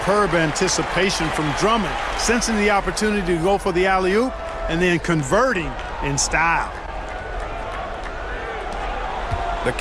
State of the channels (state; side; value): identical; both; correlation 1.00